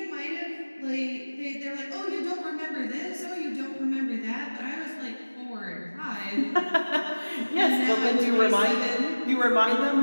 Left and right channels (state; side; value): inverted; both; correlation -1.00